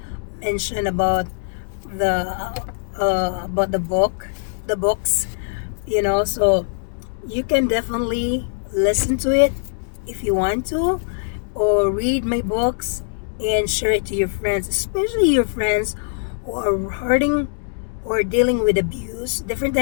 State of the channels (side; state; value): right; silent; 64 dB below the other